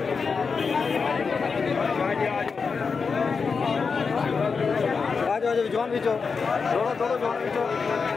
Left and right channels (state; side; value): quieter; right; 5.2 dB